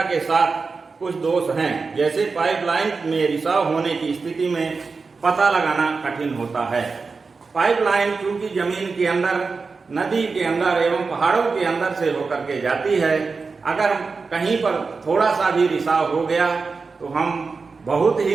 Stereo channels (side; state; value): left; quieter; 4.5 dB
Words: के साथ कुछ दोष हैं, जैसे पाइपलाइन में रिसाव होने की स्थिति में पता लगाना कठिन होता है। पाइपलाइन चूंकि जमीन के अंदर, नदी के अंदर एवं पहाड़ों के अंदर से होकर के जाती है, अगर कहीं पर थोड़ा सा भी रिसाव हो गया तो हम बहुत